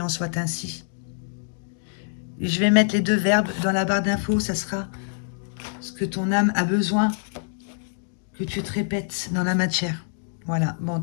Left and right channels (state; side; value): silent; right; digital silence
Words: en soit ainsi. Et je vais mettre les deux verbes dans la barre d'infos, ça sera ce que ton âme a besoin que tu te répètes dans la matière. Voilà, bon en